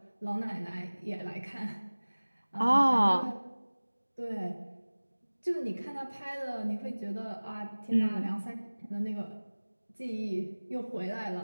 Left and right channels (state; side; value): inverted; both; correlation -1.00